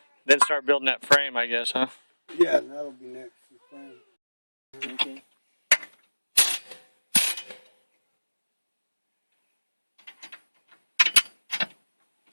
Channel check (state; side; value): inverted; both; correlation -1.00